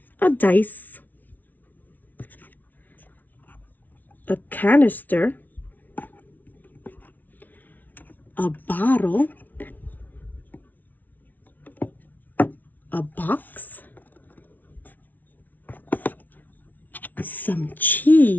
a dice, a canister, a bottle, a box, some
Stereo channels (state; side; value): late; right; 0.081 ms